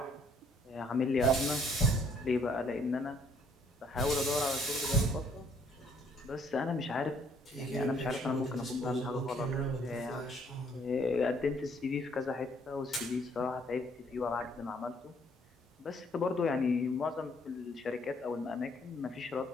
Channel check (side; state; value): both; normal; correlation 0.64